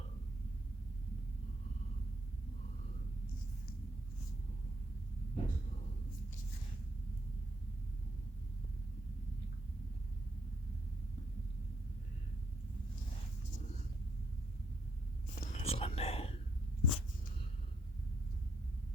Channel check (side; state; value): both; normal; correlation 0.73